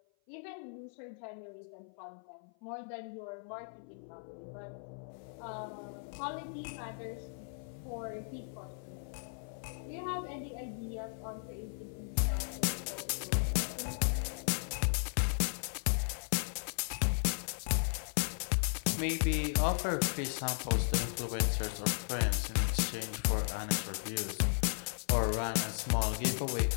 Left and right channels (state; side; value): silent; right; 54 dB below the other